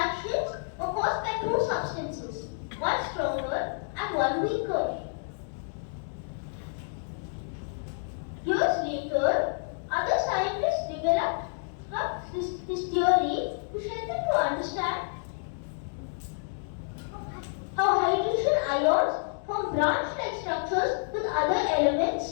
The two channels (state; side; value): silent; right; digital silence